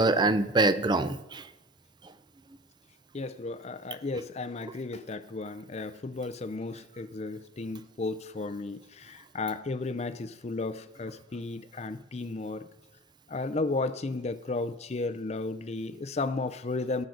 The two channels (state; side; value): normal; both; correlation 0.39